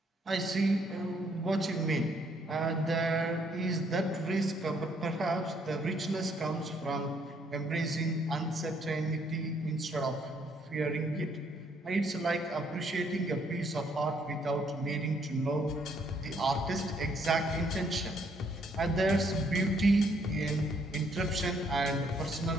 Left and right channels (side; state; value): both; normal; correlation 0.69